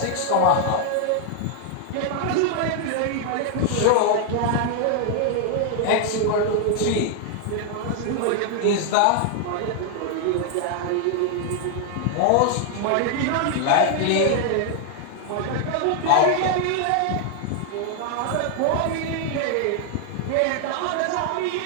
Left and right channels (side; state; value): both; different; correlation 0.00